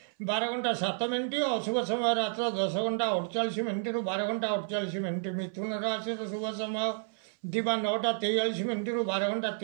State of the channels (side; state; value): left; silent; 57 dB below the other